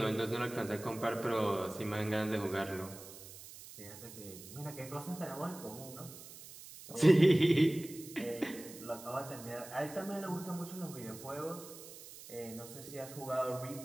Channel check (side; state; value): right; noise; hiss, 15 dB below the sound